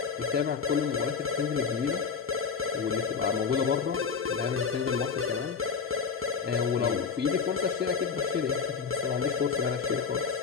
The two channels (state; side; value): quieter; right; 5.9 dB